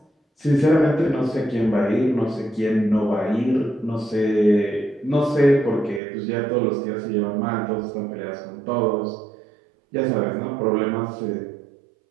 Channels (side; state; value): left; drops out; at 6.0 s